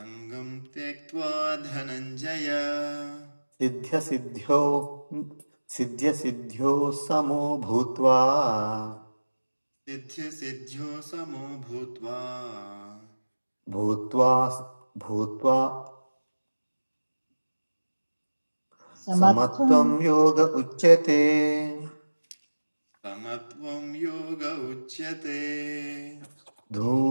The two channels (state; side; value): inverted; both; correlation -1.00